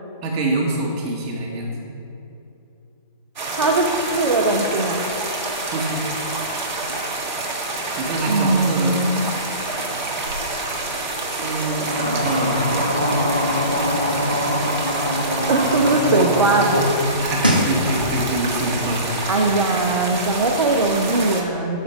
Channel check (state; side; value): inverted; both; correlation -0.33